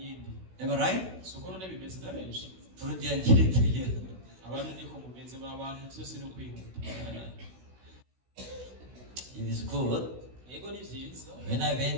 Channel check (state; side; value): late; left; 16 ms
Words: Am I right? Soko none bimeze na benshi. Burundian character here. Abantu niko mumeze mu abantu byose no kwihuta. It is good. Yego ni vyiza. When I